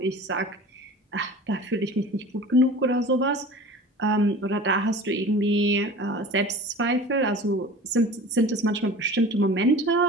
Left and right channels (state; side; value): normal; both; correlation 0.39